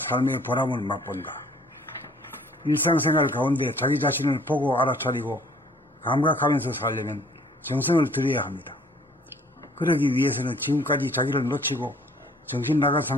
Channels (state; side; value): normal; both; correlation 0.57